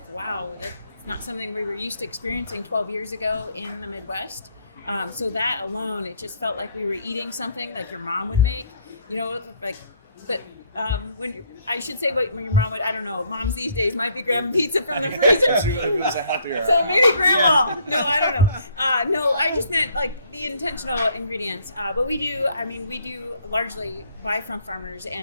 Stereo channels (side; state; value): both; inverted; correlation -0.65